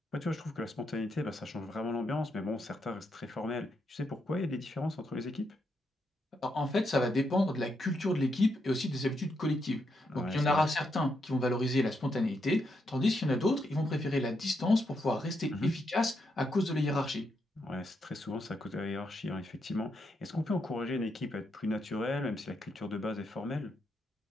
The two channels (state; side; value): normal; both; correlation 0.80